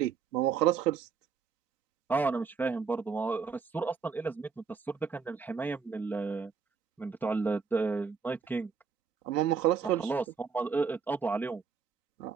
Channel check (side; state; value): left; quieter; 5.8 dB